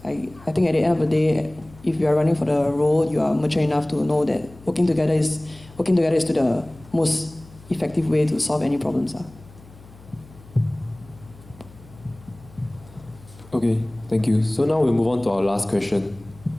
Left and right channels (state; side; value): noise; left; hum, 22 dB below the sound